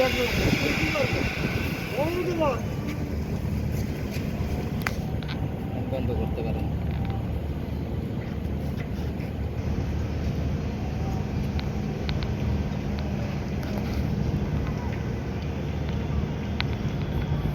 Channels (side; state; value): both; identical; correlation 1.00